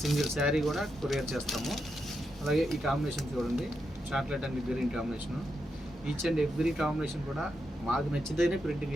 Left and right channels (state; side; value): normal; both; correlation 0.84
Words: సింగిల్ శారీ కూడా కొరియర్ చేస్తాము. అలాగే ఈ కాంబినేషన్ చూడండి, chocolate and green combination. Each and every combination కూడా మాకు నచ్చితేనే ప్రింటింగ్